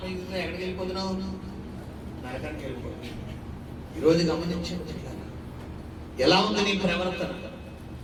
ఎక్కడికి వెళ్ళిపోతున్నావు? నరకానికి వెళ్ళిపోతుంది. ఈరోజు గమనించండి, ఎలా ఉంది నీ ప్రవర్తన?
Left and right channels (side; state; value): both; identical; correlation 1.00